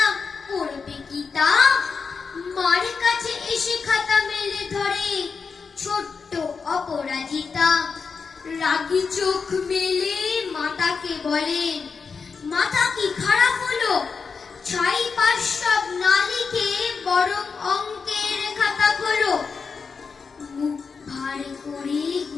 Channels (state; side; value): quieter; right; 5.3 dB